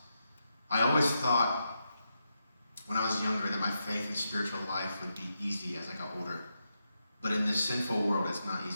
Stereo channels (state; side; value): inverted; both; correlation -0.85